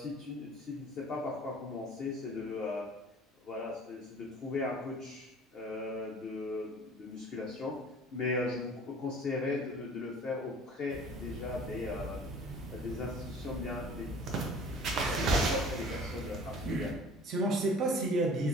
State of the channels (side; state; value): both; normal; correlation 0.47